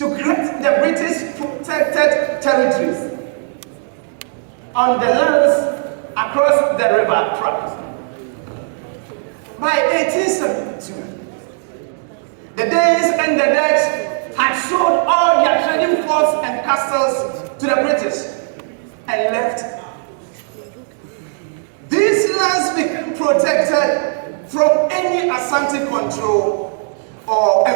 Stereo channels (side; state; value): left; silent; 68 dB below the other